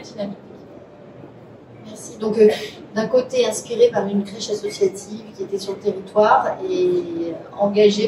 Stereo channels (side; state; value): both; identical; correlation 1.00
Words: dynamique. Merci. Donc, d'un côté, inspiré par une crèche associative qui était sur le territoire et